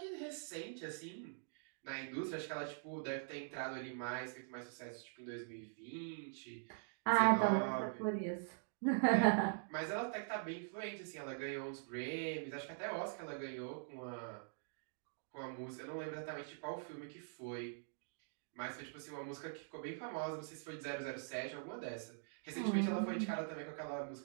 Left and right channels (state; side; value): silent; left; digital silence